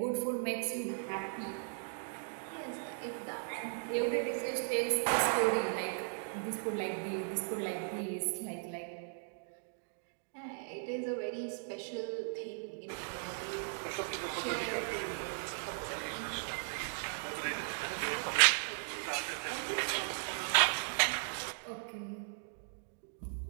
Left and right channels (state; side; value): silent; left; digital silence